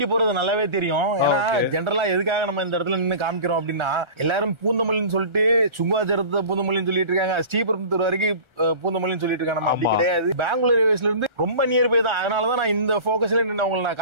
போறது நல்லாவே தெரியும். ஏன்னா ஜெனரலா எதுக்காக நம்ம இந்த இடத்துல நின்று காமிக்கிறோம் அப்படின்னா, எல்லாரும் பூந்தமல்லின்னு சொல்லிட்டு சுங்குவாச்சரத்தை பூந்தமல்லின்னு சொல்லிட்டு இருக்காங்க, ஸ்ரீபெரும்புத்தூர் வரைக்கும் பூந்தமல்லின்னு சொல்லிட்டு இருக்காங்க. நம்ம அப்படி கிடையாது. பெங்களூர் ரயில்வேஸ்ல இருந்து ரொம்ப நியர்பை தான். அதனாலதான் நான் இந்த போக்கஸ்ல நின்று அவங்களை நான்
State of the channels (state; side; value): late; left; 1.4 ms